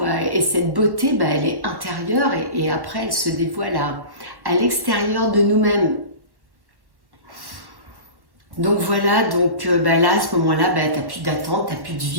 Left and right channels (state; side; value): late; left; 1.1 ms